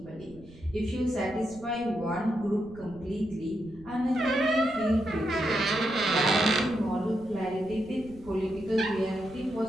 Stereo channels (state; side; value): noise; right; rumble, 21 dB below the sound